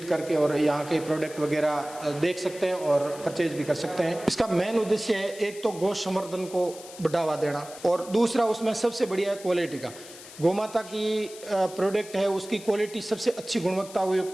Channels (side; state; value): left; noise; hiss, 17 dB below the sound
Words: करके और यहाँ के प्रोडक्ट वगैरह देख सकते हैं और परचेज भी कर सकते हैं। इसका मेन उद्देश्य है एक तो गौ संवर्धन को बढ़ावा देना और दूसरा उसमें सबसे बढ़िया है क्वालिटी का। गौमाता की प्रोडक्ट है उसकी क्वालिटी सबसे अच्छी गुणवत्ता